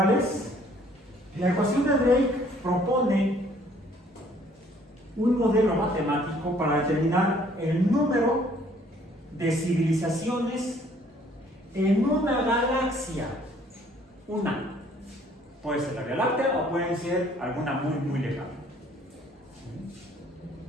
es? La ecuación de Drake propone un modelo matemático para determinar el número de civilizaciones en una galaxia. Una. Puede ser la Vía Láctea o puede ser alguna muy lejana.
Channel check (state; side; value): normal; both; correlation 0.60